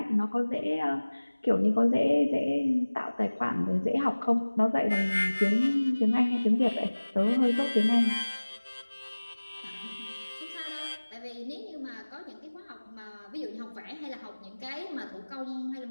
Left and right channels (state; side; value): inverted; both; correlation -1.00